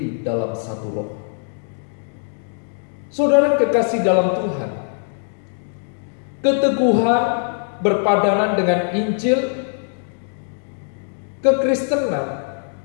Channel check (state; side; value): silent; right; digital silence